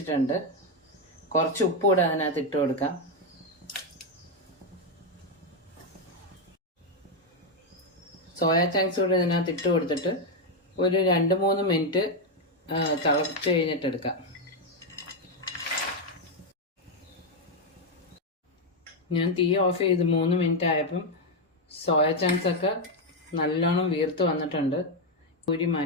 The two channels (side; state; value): both; normal; correlation 0.04